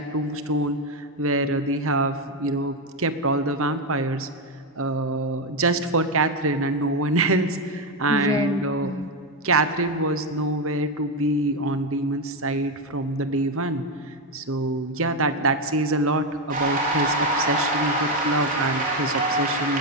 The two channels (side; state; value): both; normal; correlation 0.08